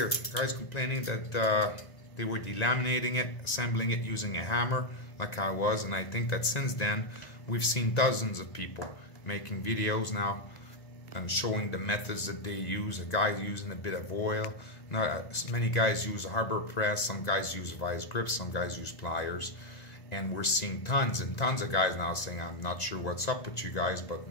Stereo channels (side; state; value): right; late; 2.0 ms